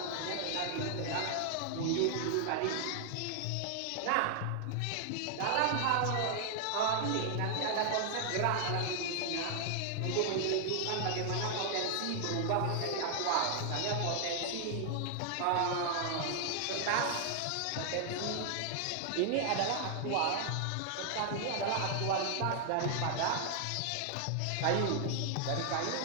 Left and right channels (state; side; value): different; both; correlation 0.00